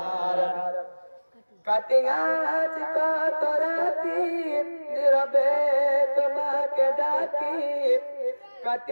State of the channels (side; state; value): both; inverted; correlation -1.00